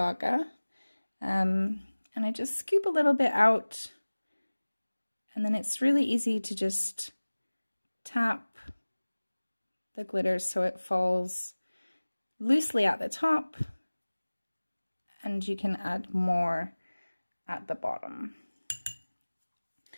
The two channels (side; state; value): both; inverted; correlation -1.00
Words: And I just scoop a little bit out, and then it's really easy to just tap the glitter so it falls loosely at the top, and you can add more at the bottom.